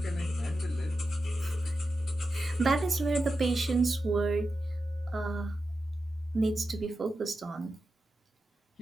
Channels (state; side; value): normal; both; correlation 0.91